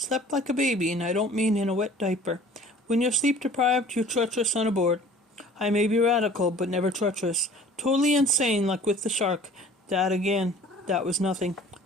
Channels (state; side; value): normal; both; correlation 0.48